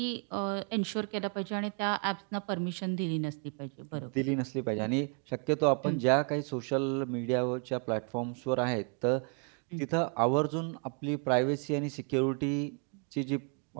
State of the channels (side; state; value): left; quieter; 39.8 dB